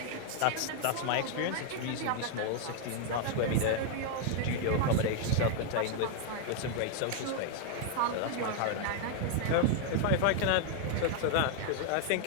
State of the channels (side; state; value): both; different; correlation 0.00